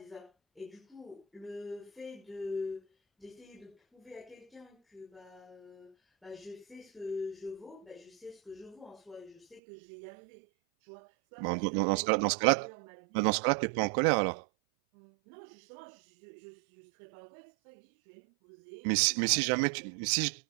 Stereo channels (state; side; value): drops out; left; at 9.6 s